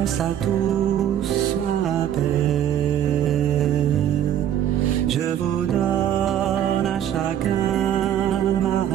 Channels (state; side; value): quieter; left; 10.5 dB